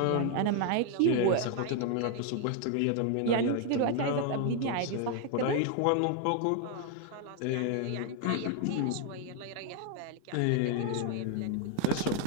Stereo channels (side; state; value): both; different; correlation 0.01